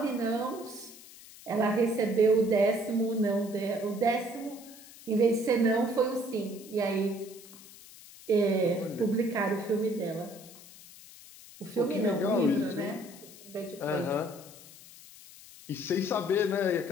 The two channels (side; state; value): left; noise; hiss, 19 dB below the sound